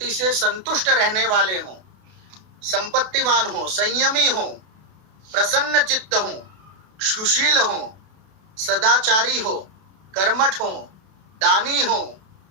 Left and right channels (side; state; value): left; late; 32 ms